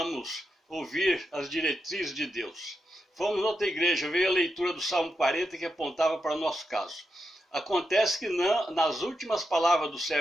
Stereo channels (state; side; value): normal; both; correlation 0.86